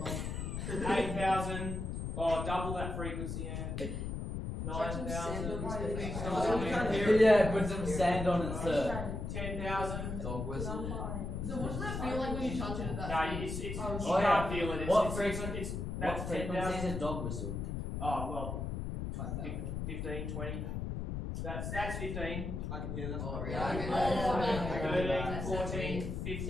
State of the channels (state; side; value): noise; left; rumble, 4 dB below the sound